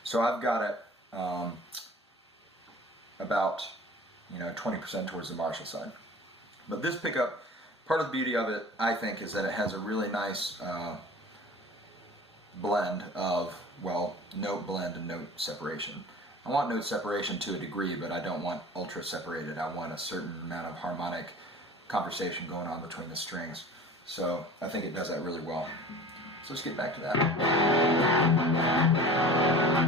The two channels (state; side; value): normal; both; correlation 0.40